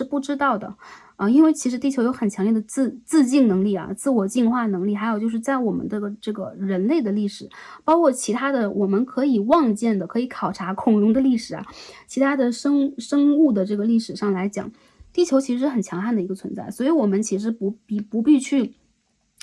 不知道的啊，因为其实地球有很强烈的自净能力啊，自我净化能力，还有就是在我们这个人类的历史，包括其他的我们可以望见的、可以考察恐龙的历史啊，其他的生物的这个历史上来讲，地球其实是很强悍的一个存在，所以我们其实不必去。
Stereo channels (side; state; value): both; identical; correlation 1.00